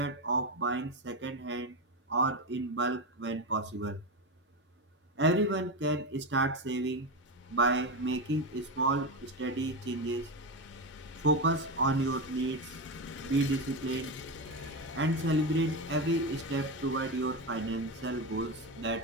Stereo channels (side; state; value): both; normal; correlation 0.15